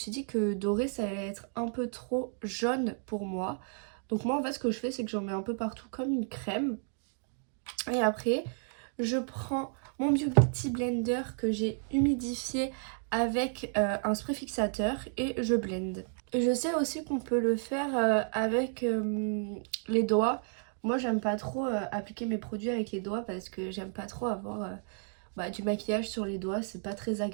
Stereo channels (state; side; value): silent; left; 56 dB below the other